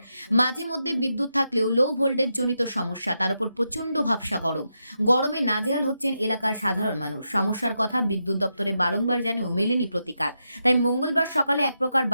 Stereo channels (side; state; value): both; inverted; correlation -0.85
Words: মাঝে মধ্যে বিদ্যুৎ থাকলেও লো ভোল্টেজ জনিত সমস্যা, তার উপর প্রচণ্ড ভাবসা গরমে নাজেহাল হচ্ছেন এলাকার সাধারণ মানুষ। সমস্যার কথা বিদ্যুৎ দপ্তরে বারংবার জানিয়েও মেলেনি প্রতিকার। তাই মঙ্গলবার সকালে এক প্রকার